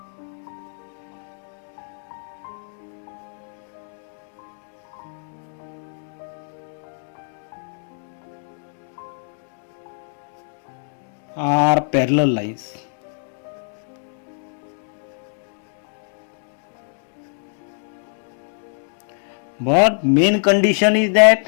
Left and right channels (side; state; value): right; silent; 62 dB below the other